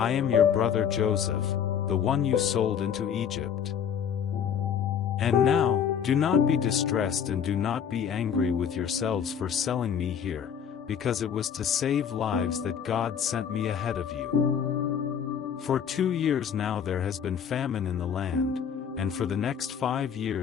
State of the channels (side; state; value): right; quieter; 8.0 dB